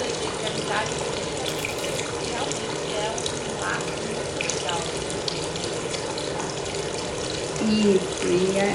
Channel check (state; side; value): identical; both; correlation 1.00